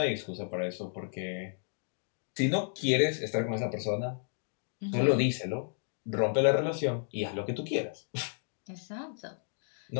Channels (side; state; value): right; silent; digital silence